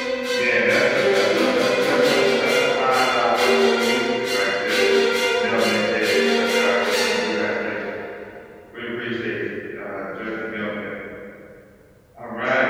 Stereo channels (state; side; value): identical; both; correlation 1.00